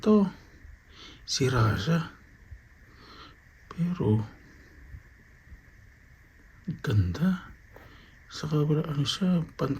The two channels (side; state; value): both; identical; correlation 1.00